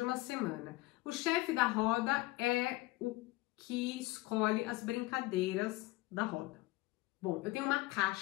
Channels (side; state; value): right; quieter; 20.6 dB